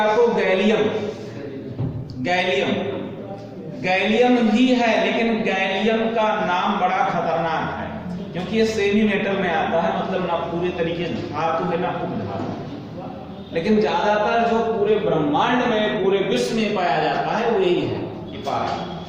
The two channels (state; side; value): identical; both; correlation 1.00